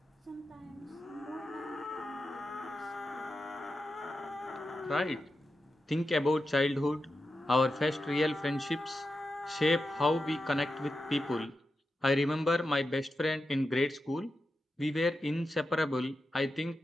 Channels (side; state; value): both; normal; correlation 0.89